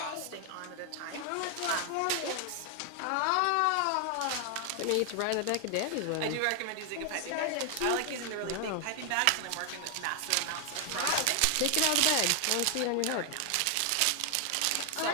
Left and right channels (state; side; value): different; both; correlation 0.00